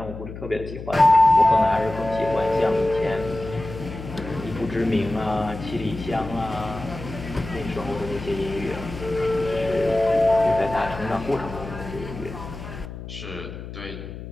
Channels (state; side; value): noise; left; hum, 11 dB below the sound